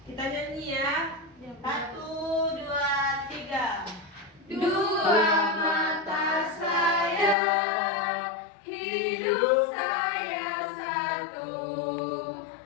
Dua mata saya, hidup saya satu.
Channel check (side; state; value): right; drops out; at 7.4 s